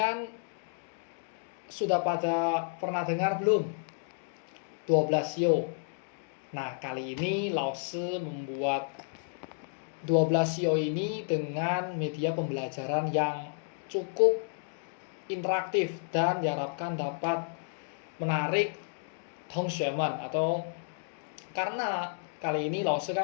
sudah pada pernah dengar belum 12 sio? Nah, kali ini Lause membuat 12 sio ini dengan media pembelajaran yang cukup interaktif dan diharapkan dapat menarik Tongshuemen, atau karena kali ini Lause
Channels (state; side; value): silent; right; digital silence